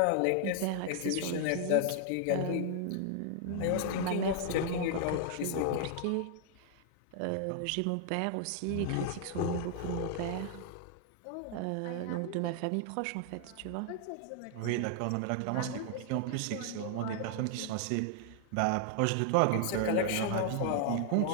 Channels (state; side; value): different; both; correlation 0.00